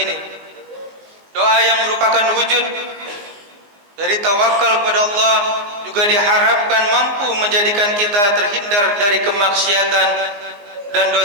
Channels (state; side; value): late; left; 19 ms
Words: Doa yang merupakan wujud dari tawakal kepada Allah juga diharapkan mampu menjadikan kita terhindar dari kemaksiatan dan